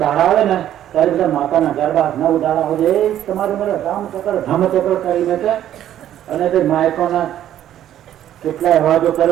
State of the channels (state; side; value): quieter; left; 11.5 dB